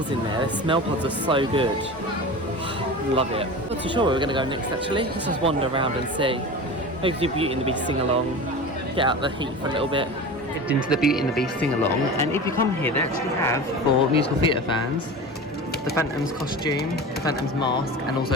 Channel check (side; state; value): both; normal; correlation 0.32